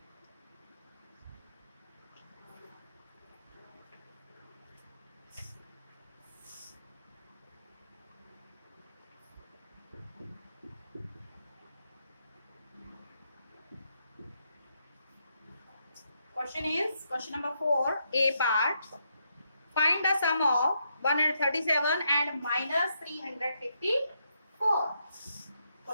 Question is question number 4, A part. Find the sum of 137 and minus 354.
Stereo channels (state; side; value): inverted; both; correlation -0.79